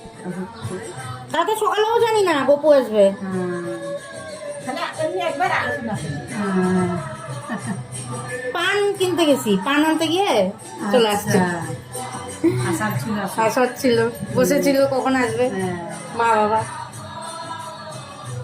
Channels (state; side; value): identical; both; correlation 1.00